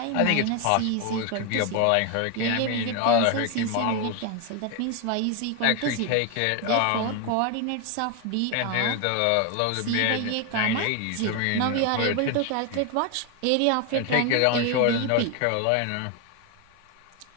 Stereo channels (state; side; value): different; both; correlation 0.01